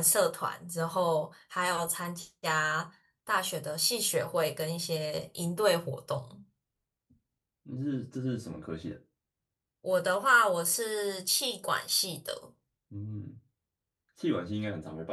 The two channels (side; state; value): both; identical; correlation 1.00